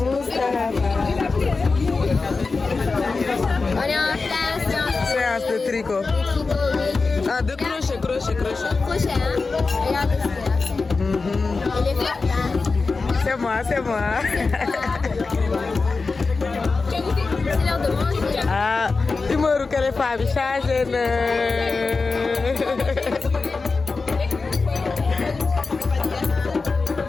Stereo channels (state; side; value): quieter; right; 4.1 dB